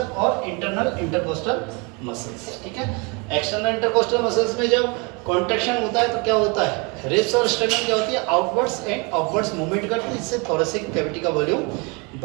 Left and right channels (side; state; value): left; quieter; 30.5 dB